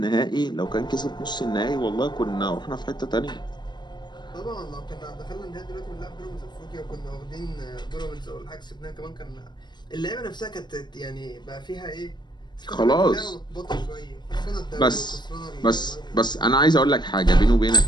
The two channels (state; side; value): late; right; 0.21 ms